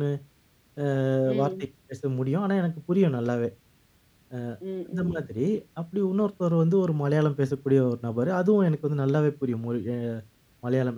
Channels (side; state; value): both; identical; correlation 1.00